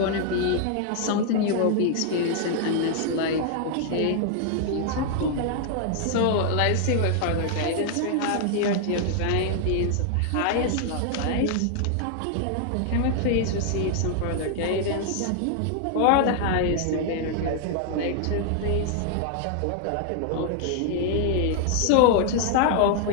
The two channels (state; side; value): different; both; correlation 0.00